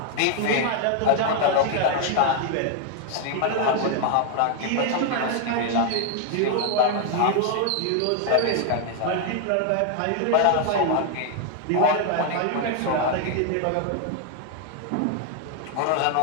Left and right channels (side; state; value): both; different; correlation 0.00